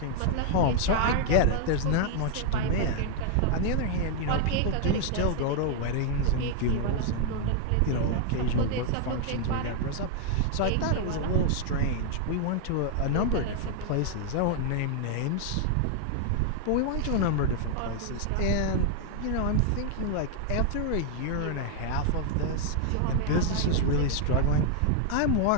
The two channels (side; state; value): both; different; correlation 0.00